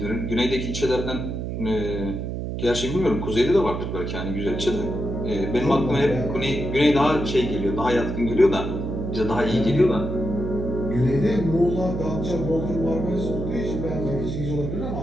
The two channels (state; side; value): noise; right; hum, 4 dB below the sound